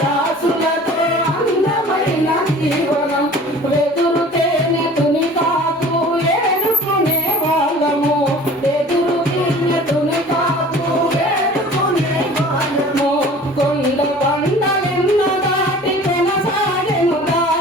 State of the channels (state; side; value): normal; both; correlation 0.45